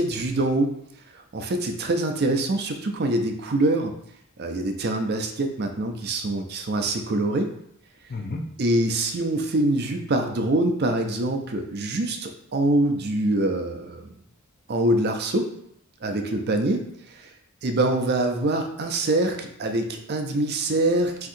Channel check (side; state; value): both; normal; correlation 0.40